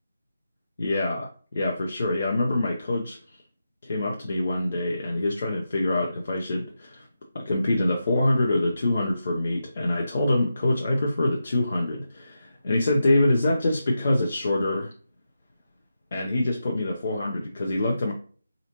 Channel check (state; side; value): inverted; both; correlation -0.88